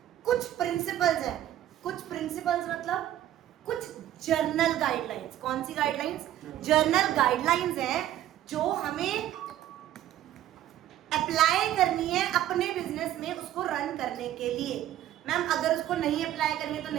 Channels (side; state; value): left; quieter; 12.7 dB